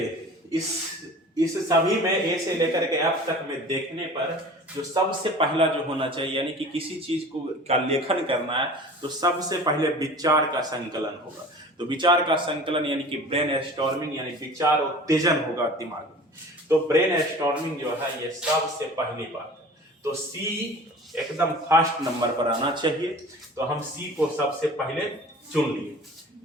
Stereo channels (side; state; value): both; normal; correlation 0.41